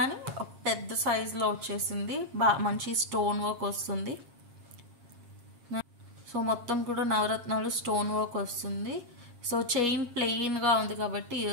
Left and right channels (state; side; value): late; left; 7.5 ms